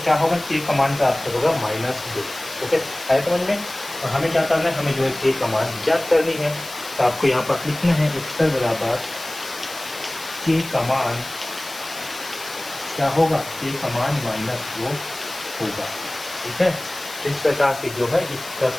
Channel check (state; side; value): noise; left; hiss, 13 dB below the sound